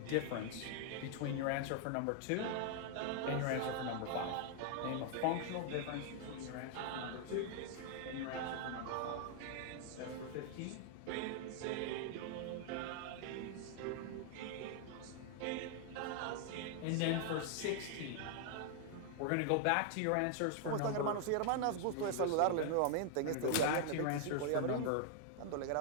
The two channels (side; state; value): both; different; correlation 0.00